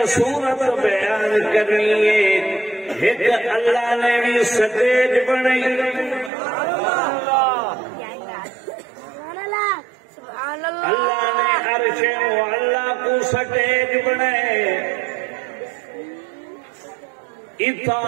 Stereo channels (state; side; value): drops out; left; at 6.3 s